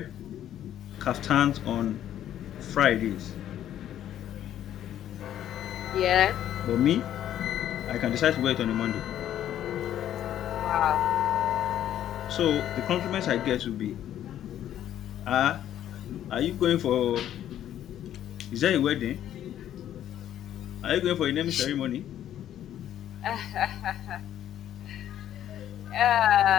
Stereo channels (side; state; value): right; quieter; 11.3 dB